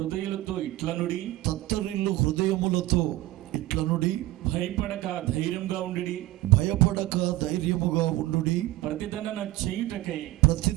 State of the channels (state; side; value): quieter; left; 16.9 dB